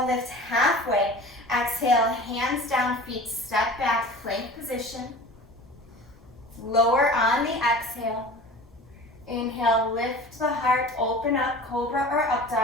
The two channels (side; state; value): both; normal; correlation 0.39